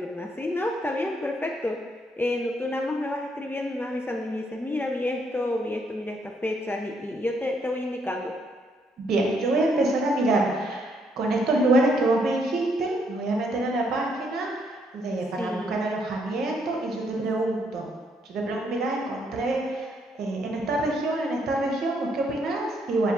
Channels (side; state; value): both; normal; correlation 0.72